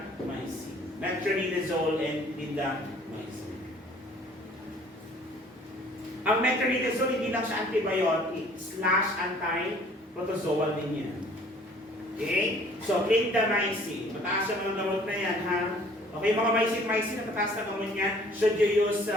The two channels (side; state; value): both; normal; correlation 0.55